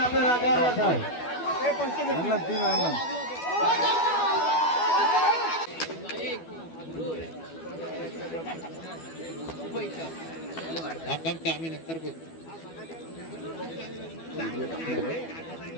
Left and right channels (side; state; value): right; late; 12 ms